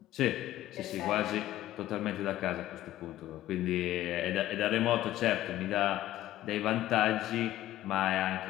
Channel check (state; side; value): quieter; right; 14.2 dB